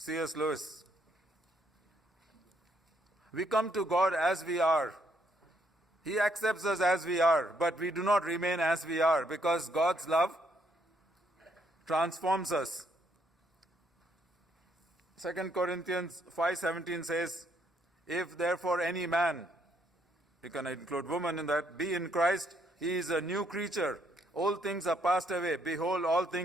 Lewis. We come to God as we are. He accepts us as we are, but we do not remain as we are because God's love transforms us. 2 Corinthians 5:17 says, if therefore any man, you can include woman in that, be in Christ, he is a new creature. Old things are passed away. Behold, all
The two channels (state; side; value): normal; both; correlation 0.72